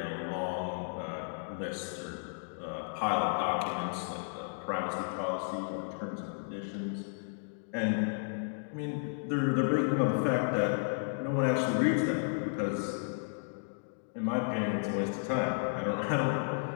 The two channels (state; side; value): silent; right; digital silence